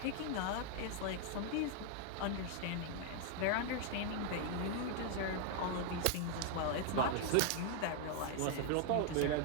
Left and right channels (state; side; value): different; both; correlation 0.00